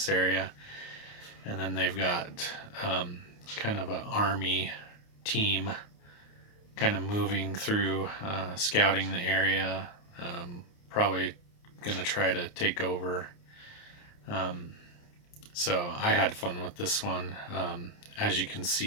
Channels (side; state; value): right; late; 29 ms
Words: area, and then they've got kind of an army team kind of moving through, scouting the area, probably gonna try to take over. So I had fun with this one. As you can